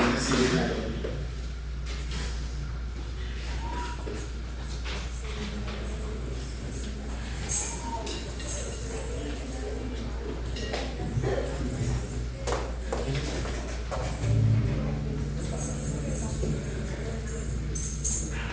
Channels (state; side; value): identical; both; correlation 1.00